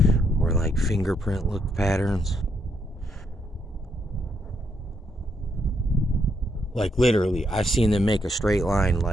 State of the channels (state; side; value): normal; both; correlation 0.76